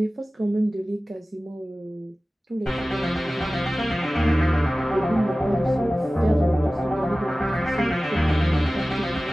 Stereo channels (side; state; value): both; normal; correlation 0.97